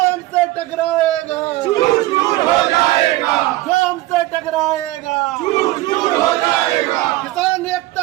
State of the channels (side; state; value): left; quieter; 17.6 dB